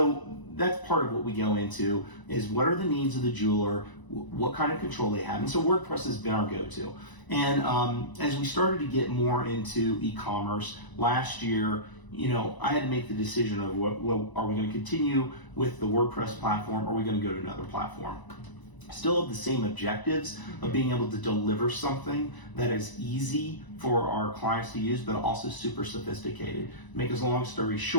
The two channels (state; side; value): late; right; 1.0 ms